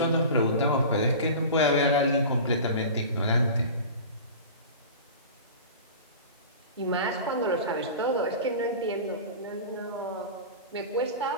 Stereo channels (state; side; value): inverted; both; correlation -0.34